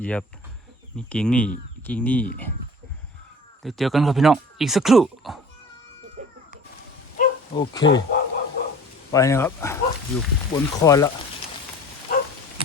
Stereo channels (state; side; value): normal; both; correlation 0.44